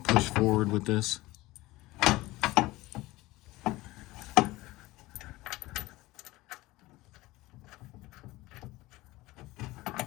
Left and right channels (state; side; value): quieter; right; 19.3 dB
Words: push forward with this.